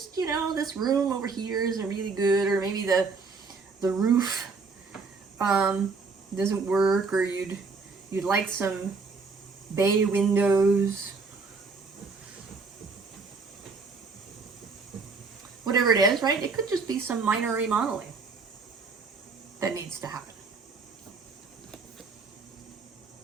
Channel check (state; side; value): quieter; left; 4.5 dB